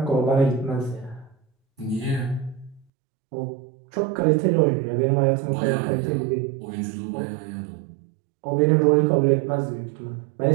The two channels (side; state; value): left; drops out; at 2.9 s